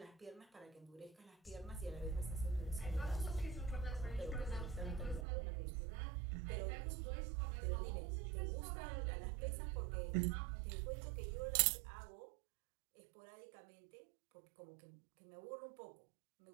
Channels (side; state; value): left; drops out; at 5.2 s